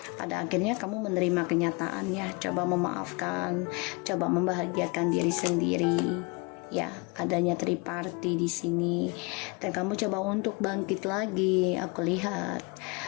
Pada akhirnya kamu menerima kenyataan ya, coba memaafkan, coba membahagiakan diri sendiri ya, adanya triparty di sini, dan kamu coba untuk bangkit lagi. Aku lihat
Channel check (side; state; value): right; quieter; 29.2 dB